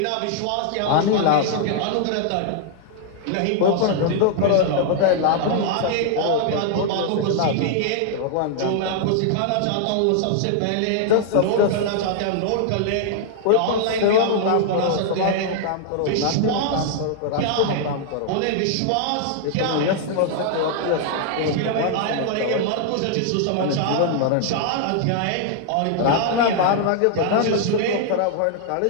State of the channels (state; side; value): different; both; correlation -0.01